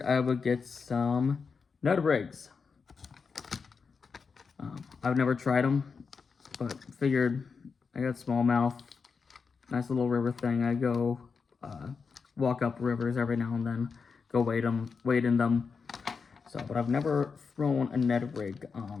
I would get some Ned rigs. I've never tried them, but figured I got smallmouth, nice little river thing. I go walk up rivers every now and then, go wade in them. So, but I've never thrown a Ned rig.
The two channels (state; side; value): quieter; right; 5.3 dB